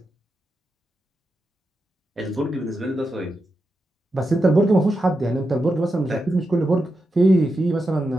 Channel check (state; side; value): normal; both; correlation 0.88